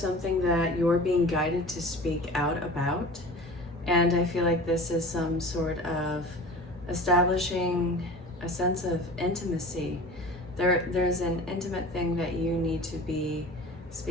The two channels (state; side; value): normal; both; correlation 0.38